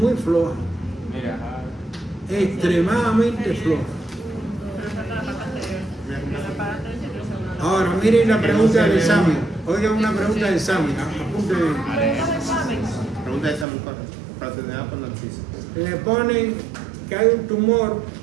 floja, Mira, extremadamente floja. Ahora, miren la pregunta del examen. Oigan una pregunta del examen, apunten. Pregunta de examen para tener por Narciso. Le ponen que hay un tumor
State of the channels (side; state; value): left; drops out; at 13.7 s